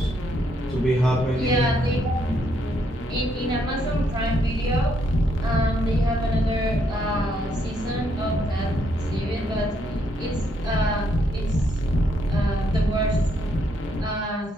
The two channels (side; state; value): both; normal; correlation 0.73